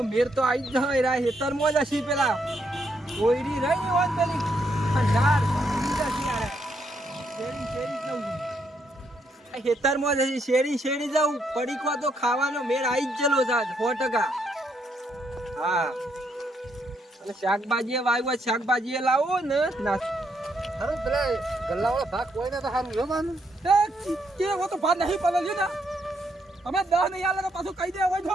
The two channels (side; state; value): both; normal; correlation 0.76